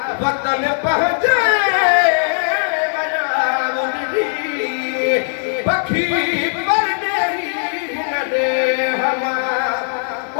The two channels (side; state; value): right; silent; 67 dB below the other